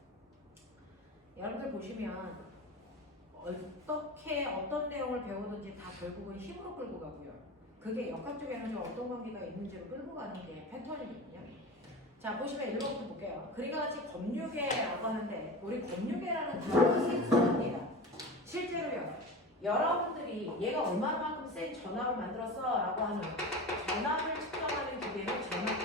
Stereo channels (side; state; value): both; normal; correlation 0.30